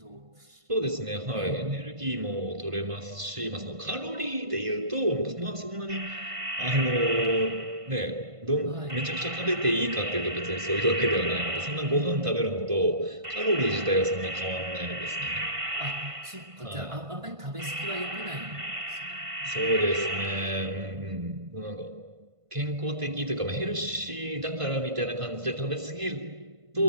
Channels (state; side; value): late; left; 1.5 ms